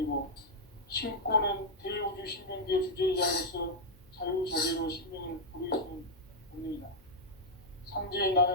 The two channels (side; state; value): left; noise; hum, 28 dB below the sound